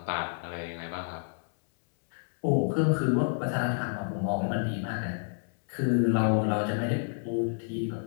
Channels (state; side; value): silent; right; 58 dB below the other